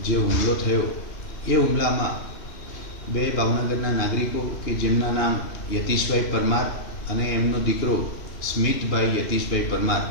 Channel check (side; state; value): right; late; 2.9 ms